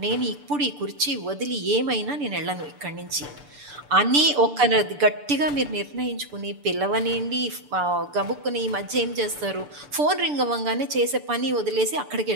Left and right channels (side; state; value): left; late; 6.9 ms